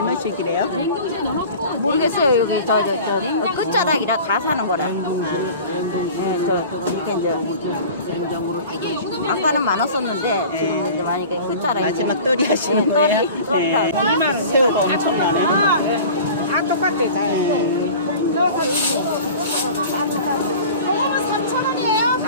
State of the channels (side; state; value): both; inverted; correlation -0.40